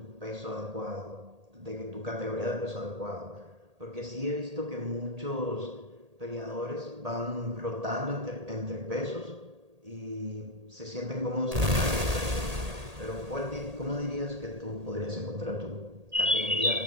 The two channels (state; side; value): late; left; 1.8 ms